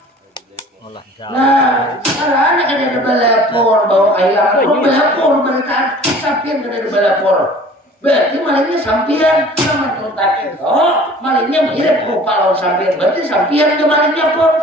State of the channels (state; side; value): normal; both; correlation 0.47